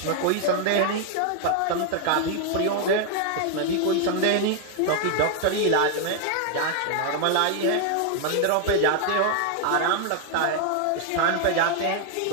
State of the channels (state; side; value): different; both; correlation 0.00